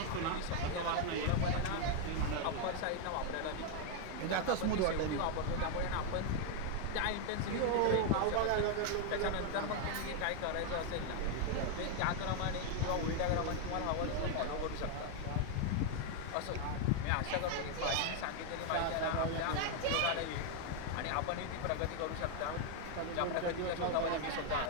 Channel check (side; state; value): both; different; correlation 0.00